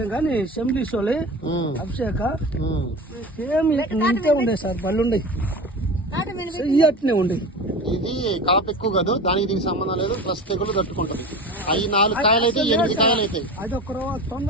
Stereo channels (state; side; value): normal; both; correlation 0.32